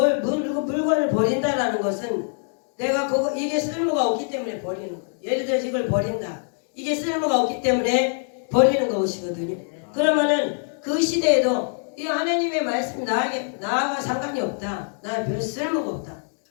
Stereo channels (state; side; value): silent; right; 57 dB below the other